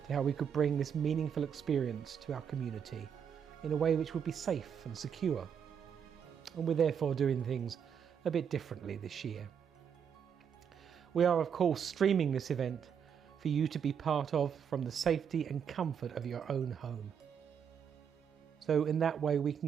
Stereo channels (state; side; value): quieter; left; 7.6 dB